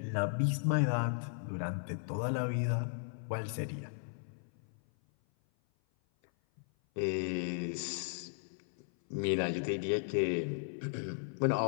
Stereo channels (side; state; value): right; silent; 54 dB below the other